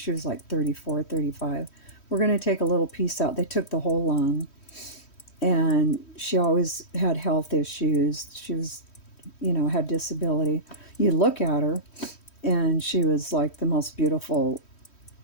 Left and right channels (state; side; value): late; right; 3.1 ms